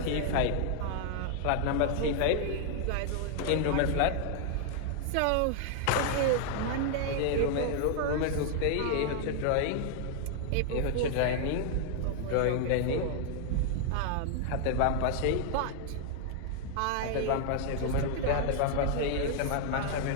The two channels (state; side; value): different; both; correlation 0.00